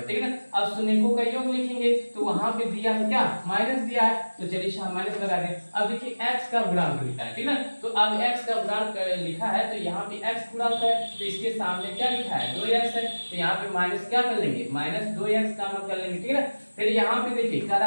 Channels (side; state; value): both; inverted; correlation -1.00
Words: ठीक है ना। अब शून्यों का योग लिखेंगे तो वहां पे दिया है क्या माइनस दिया है, तो चलिए माइनस लगा दें। अब देखिए x का गुणांक लिखा है, ठीक है। तो अब x का गुणांक लिखा है तो यहाँ पे x गुणांक है तो इसके सामने क्या लिखा है 2x है, तो यहाँ पे माइनस क्या कर लेंगे -2x का मान कर लेंगे, ठीक है। फिर यहाँ पे देखिए कह